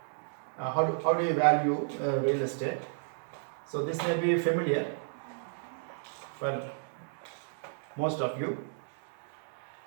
How do you value real estate? So this may be familiar for most of you.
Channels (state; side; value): silent; left; digital silence